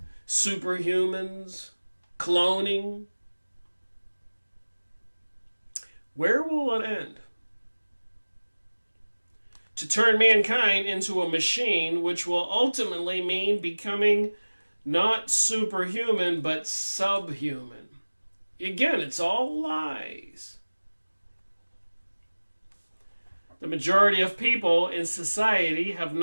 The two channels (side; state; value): both; inverted; correlation -1.00